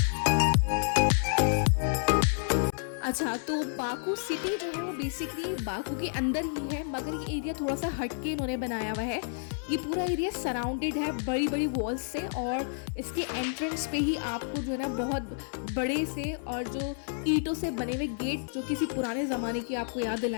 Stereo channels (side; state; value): right; silent; 58 dB below the other